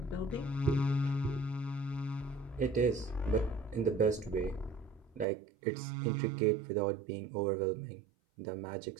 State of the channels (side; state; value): left; drops out; at 5.2 s